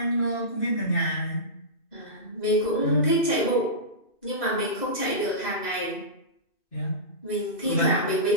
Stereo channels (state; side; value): late; right; 2.6 ms